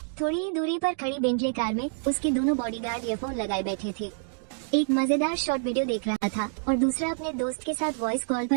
थोड़ी ही दूरी पर खड़ी बेंटले कार में उसके दोनों बॉडीगार्ड ईयरफोन लगाए बैठे थे। एक मजेदार शॉर्ट वीडियो देख रहा था और दूसरा अपने दोस्त के साथ वॉइस कॉल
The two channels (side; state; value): left; silent; digital silence